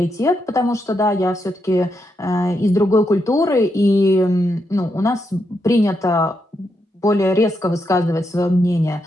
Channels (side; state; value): both; normal; correlation 0.82